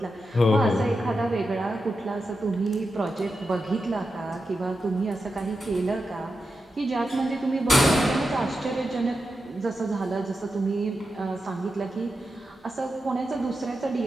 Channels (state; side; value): normal; both; correlation 0.89